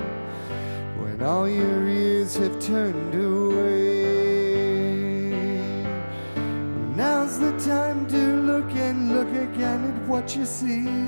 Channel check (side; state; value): both; inverted; correlation -1.00